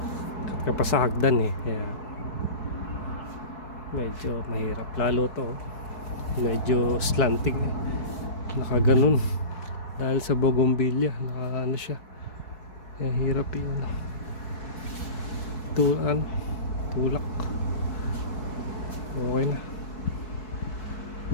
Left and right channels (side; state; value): right; late; 4.7 ms